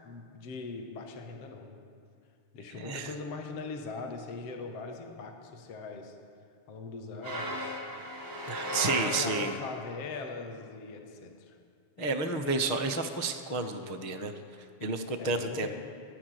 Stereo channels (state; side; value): late; right; 6.6 ms